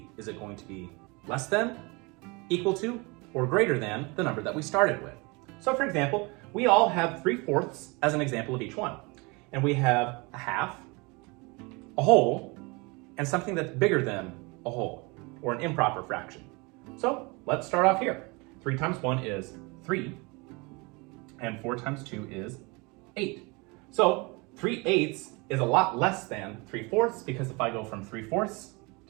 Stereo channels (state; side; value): quieter; left; 27.6 dB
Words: Is it going to be less than, equal to, or greater than the number that we started with? So for example, we all have 3/4 as an example of each one. And we have a half, a whole, and something that's bigger than a whole, or an improper fraction. So let's start off here. 3 times 1 is 3, and 4 times 2 is 8. So 3/8 is a lot less than 3/4, because if I go from 3/4